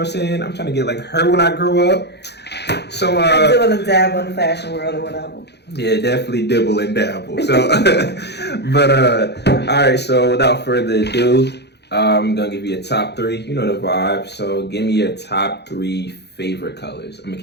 saying? I'm trying to get like her when I grow up. So I dibble and dabble in the fashion world or whatever. Yeah, definitely dibble and dabble. So alright, so without further ado, I'm gonna give you a top 3. You know the vibe. So give me your top 3 favorite colors. I'm gonna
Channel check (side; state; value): right; late; 0.49 ms